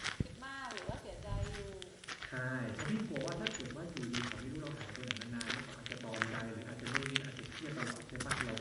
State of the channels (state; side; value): identical; both; correlation 1.00